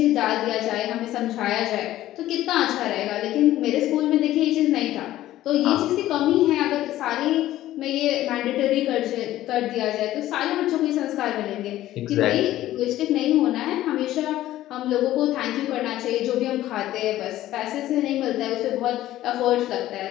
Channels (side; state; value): right; quieter; 14.3 dB